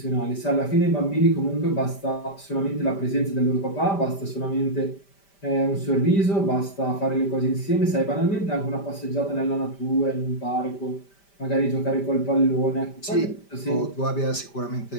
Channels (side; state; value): right; late; 5.1 ms